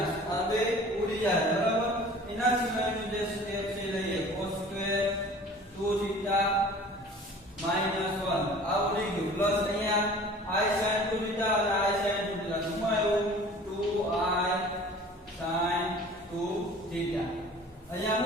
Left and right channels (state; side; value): normal; both; correlation 0.45